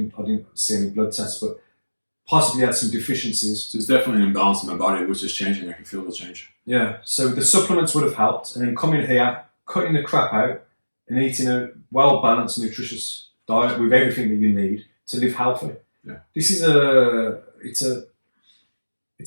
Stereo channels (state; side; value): inverted; both; correlation -1.00